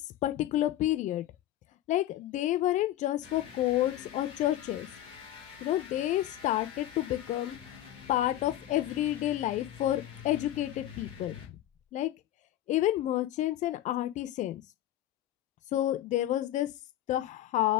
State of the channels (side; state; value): right; quieter; 13.4 dB